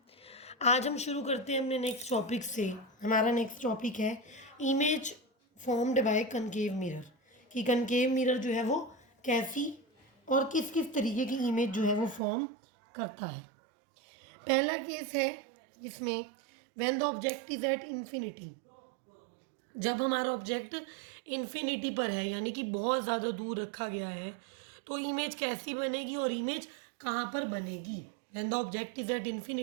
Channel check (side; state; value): left; drops out; at 12.2 s